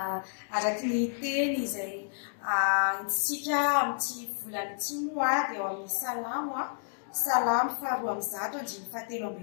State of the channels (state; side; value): silent; right; digital silence